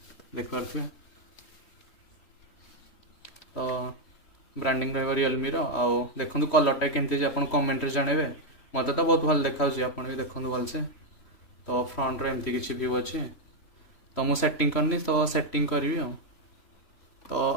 देखिए तो ब्रांडिंग रहा रियलमी आउ देखो कलरटा केमती आप कमेंट जनइबे मत तो बहुत भल देखा आप भी देखो भलसे तो फ्रंट एमती किसी व्यू अच्छे तो मुझे सेटिंग करनी तो सेटिंग करी तो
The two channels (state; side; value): late; right; 3.0 ms